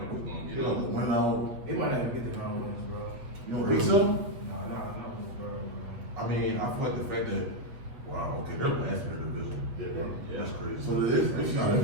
it's gonna get in. Win out. They might not even get the 9 wins, bro. You don't think so? No, bro. I mean, I feel like the fact that they're last in their division. Yeah, bro. That's crazy. So it is.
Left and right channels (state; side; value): late; left; 8.0 ms